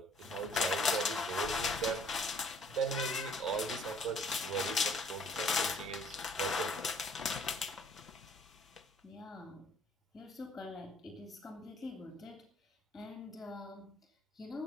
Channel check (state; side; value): normal; both; correlation 0.58